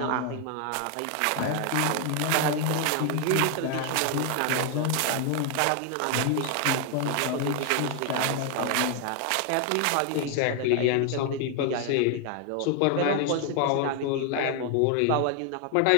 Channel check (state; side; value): different; both; correlation 0.00